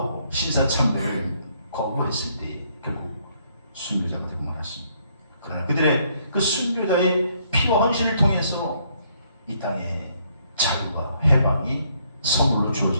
신사참배를 거부했을 때 결국 순교자가 되고 말았습니다. 그러나 그들의 그 순교자의 피와 헌신을 통해서 이 땅에 자유와 해방이 선물로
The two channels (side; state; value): both; inverted; correlation -0.69